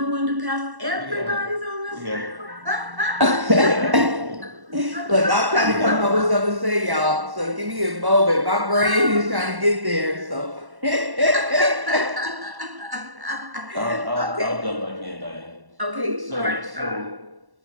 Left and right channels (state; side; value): late; left; 1.1 ms